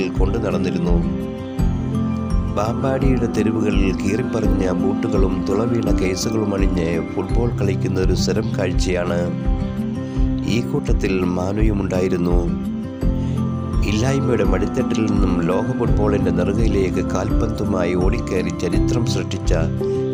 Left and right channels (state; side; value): identical; both; correlation 1.00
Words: കൊണ്ടു നടന്നിരുന്നു. ബാമ്പാടിയുടെ തെരുവുകളിൽ കീറിപ്പറിഞ്ഞ ബൂട്ടുകളും തുളവീണ കേസുകളും അണിഞ്ഞ് ഫുട്ബോൾ കളിക്കുന്ന ഒരു സ്ഥിരം കാഴ്ചയാണ്. ഈ കൂട്ടത്തിൽ മാനുയുമുണ്ടായിരുന്നു. ഇല്ലായ്മയുടെ മടിത്തട്ടിൽ നിന്നും ലോക ഫുട്ബോളിൻ്റെ നെറുകയിലേക്ക് കാൽപന്തുമായി ഓടിക്കയറി ചരിത്രം സൃഷ്ടിച്ച